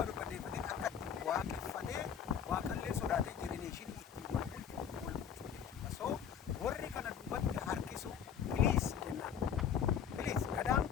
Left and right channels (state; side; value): quieter; right; 8.2 dB